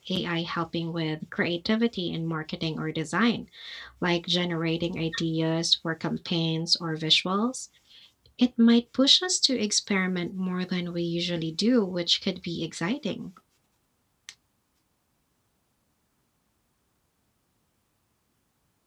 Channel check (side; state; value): both; identical; correlation 1.00